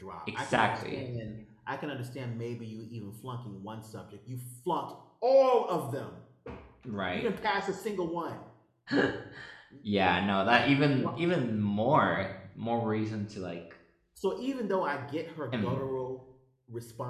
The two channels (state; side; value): identical; both; correlation 1.00